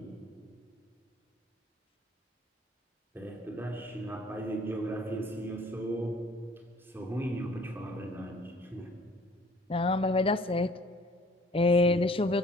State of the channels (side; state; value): both; normal; correlation 0.55